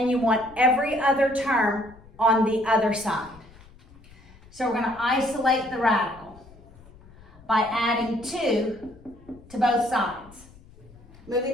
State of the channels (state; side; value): noise; left; rumble, 23 dB below the sound